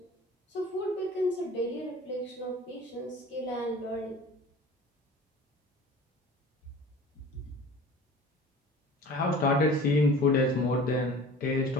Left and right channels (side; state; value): both; normal; correlation 0.43